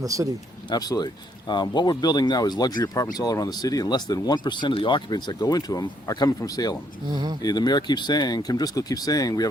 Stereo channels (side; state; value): both; normal; correlation 0.70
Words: the city. Absolutely. What we're building now is luxury apartments all around the city, and less than 1% of the occupants that go into them are coming from Salem. The mayor keeps saying, Kim Driscoll keeps saying, we have